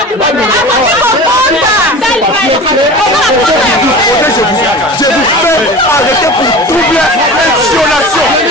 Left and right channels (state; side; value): normal; both; correlation 0.35